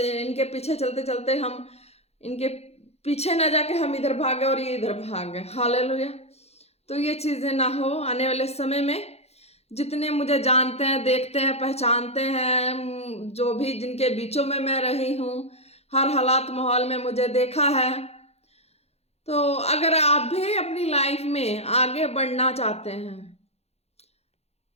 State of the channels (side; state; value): right; late; 0.30 ms